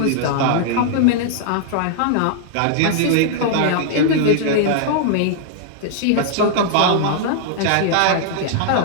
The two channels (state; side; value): different; both; correlation -0.01